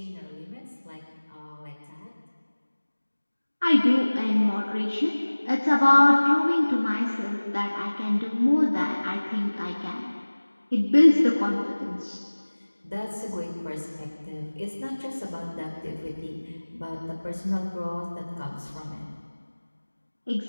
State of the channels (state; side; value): inverted; both; correlation -1.00